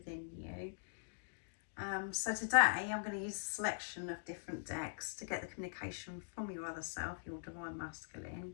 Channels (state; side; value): silent; right; digital silence